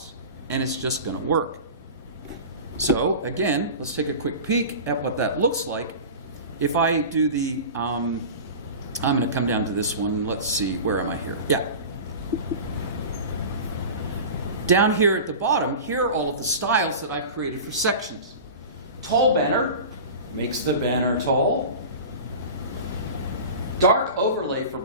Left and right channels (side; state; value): both; inverted; correlation -0.33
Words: and it's just going to work. So again, let's take a quick peek at what that looks like. If I do the, I'm going to come down to this one. Let's see, where am I here? Yeah. Down here at the bottom, here are all of the styles that I've created for sections. Tall banner makes the banner tall. Dark overlay for